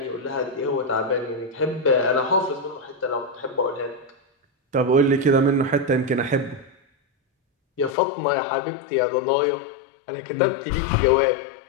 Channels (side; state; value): right; drops out; at 8.0 s